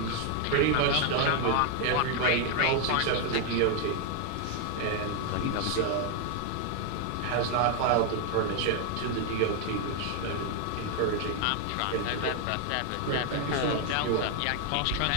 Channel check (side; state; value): both; different; correlation 0.01